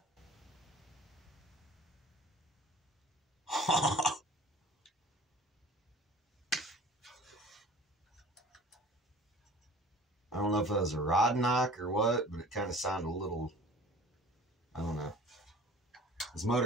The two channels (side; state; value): both; normal; correlation 0.45